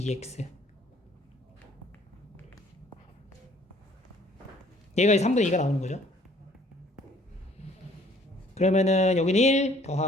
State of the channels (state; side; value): normal; both; correlation 0.58